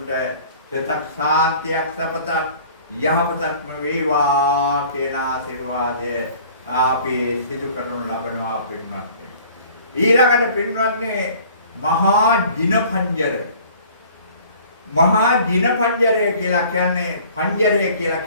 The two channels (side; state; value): both; inverted; correlation -0.50